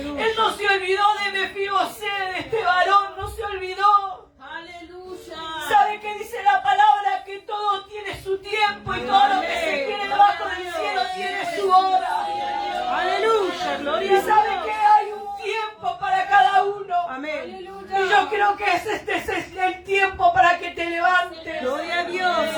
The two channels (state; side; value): identical; both; correlation 1.00